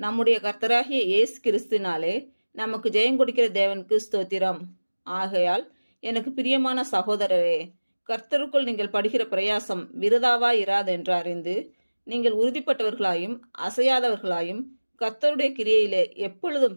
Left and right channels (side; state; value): both; inverted; correlation -1.00